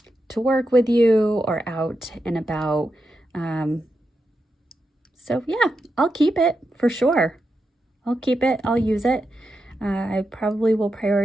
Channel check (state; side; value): normal; both; correlation 0.87